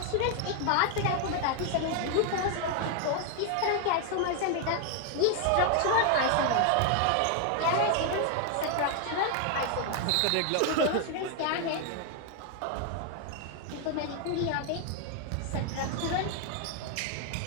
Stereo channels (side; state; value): both; different; correlation 0.00